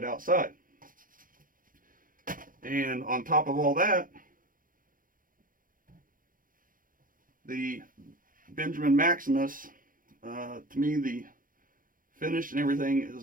outside. And on top of all that, the Benjamin Maximus, to me the finish and everything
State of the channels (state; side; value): late; left; 0.40 ms